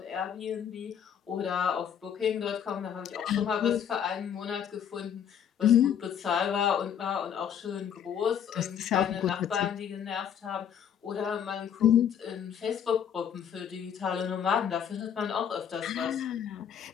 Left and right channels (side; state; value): right; quieter; 8.6 dB